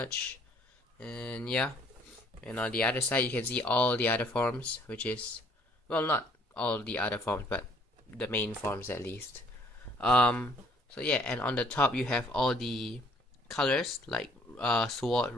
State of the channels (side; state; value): both; normal; correlation 0.61